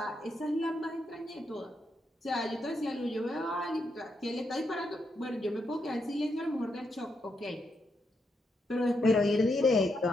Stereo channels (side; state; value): both; normal; correlation 0.81